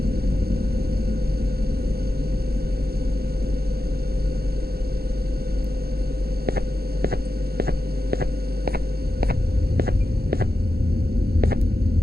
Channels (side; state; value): left; late; 0.45 ms